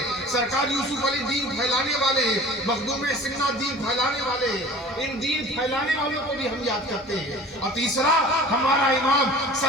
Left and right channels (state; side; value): normal; both; correlation 0.43